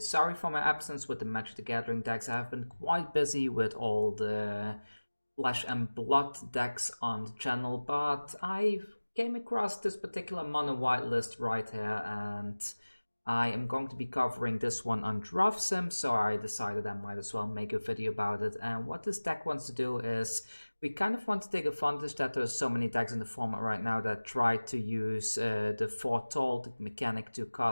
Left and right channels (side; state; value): both; inverted; correlation -1.00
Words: for my absence with the Magic the Gathering decks. I have been quite busy with all the Flesh and Blood decks on the channel, but I came across this particular mono white list right here, and I am going to be covering this one on Draft Sim, so I decided I might as well make a video about it. And what this deck wants to do is, we kind of want to take advantage that there's so many decks in the format right now that try to use the Foretold mechanic to